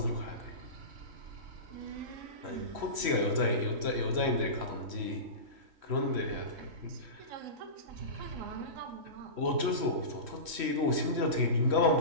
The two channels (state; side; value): late; left; 3.0 ms